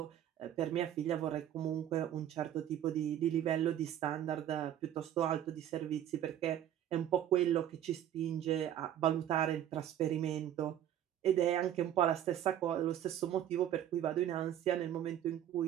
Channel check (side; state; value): left; quieter; 11.1 dB